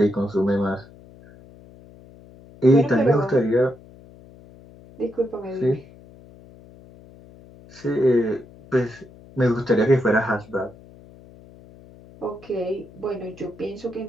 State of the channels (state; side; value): noise; left; hum, 22 dB below the sound